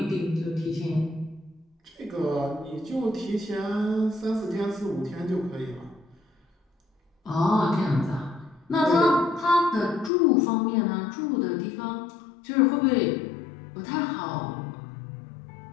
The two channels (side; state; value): right; drops out; at 10.1 s